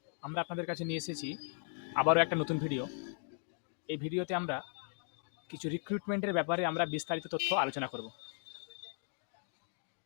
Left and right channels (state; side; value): silent; right; digital silence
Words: আমরা আপনাদের কাছে নিয়ে এসেছি আবারও একটা নতুন ভিডিও। এই ভিডিওতে আমরা কিছু রিক্রুটমেন্টের ব্যাপারে আমরা বিস্তারিত তথ্য আলোচনা করব।